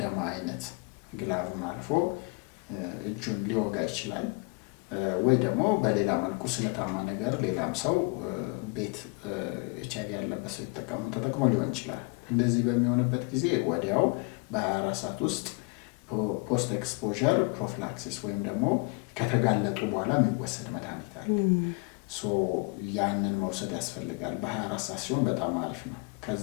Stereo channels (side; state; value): right; quieter; 30.2 dB